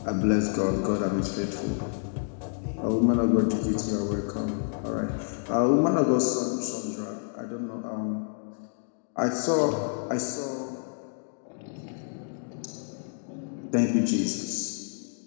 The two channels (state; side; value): silent; right; digital silence